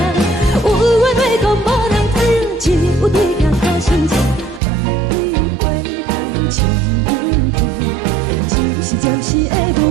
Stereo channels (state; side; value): drops out; left; at 4.6 s